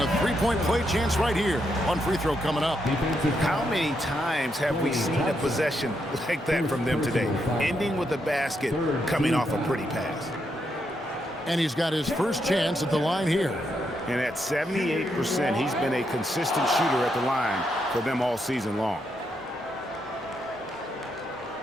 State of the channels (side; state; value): both; normal; correlation 0.80